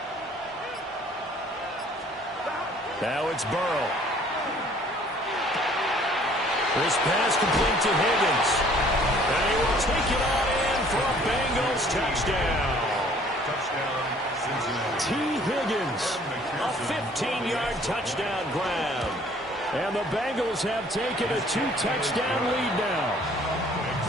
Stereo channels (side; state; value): both; normal; correlation 0.56